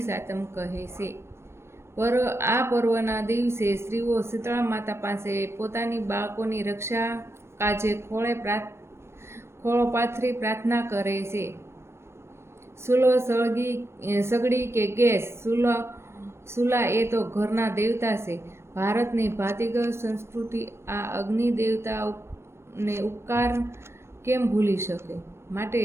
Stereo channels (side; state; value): left; late; 0.13 ms